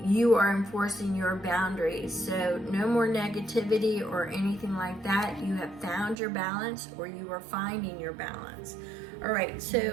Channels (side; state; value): left; drops out; at 6.2 s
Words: you are enforcing your boundaries. So no more negativity or anything like that. You have found your balance, or you are finding your balance. All right,